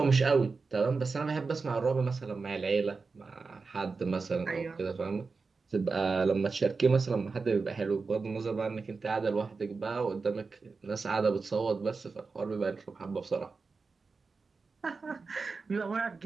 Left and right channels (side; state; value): left; quieter; 4.4 dB